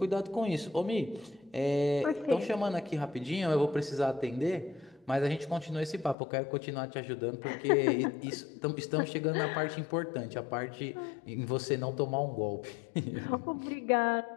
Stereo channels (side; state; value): right; drops out; at 6.2 s